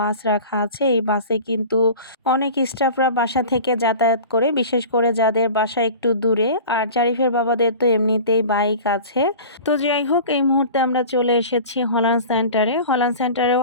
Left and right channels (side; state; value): both; inverted; correlation -0.38